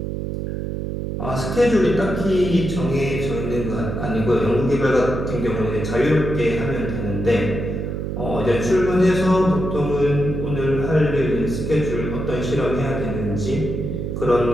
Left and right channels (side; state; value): right; noise; hum, 4 dB below the sound